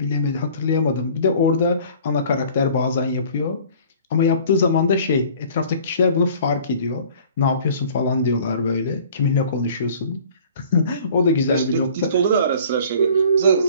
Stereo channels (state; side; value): inverted; both; correlation -0.50